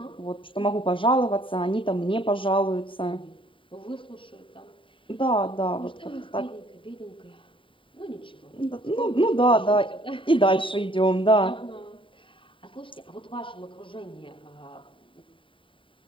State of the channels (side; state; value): right; late; 0.25 ms